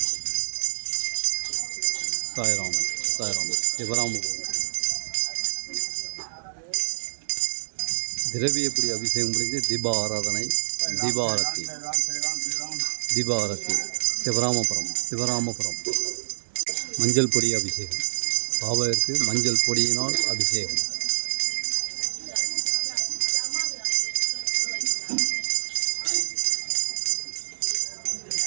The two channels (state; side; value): silent; left; digital silence